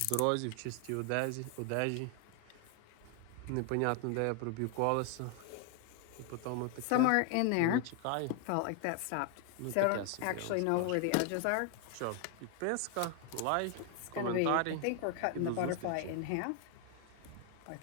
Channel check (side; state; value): both; different; correlation 0.00